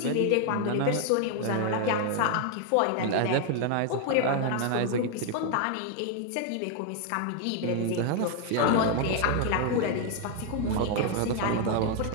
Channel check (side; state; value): both; different; correlation 0.01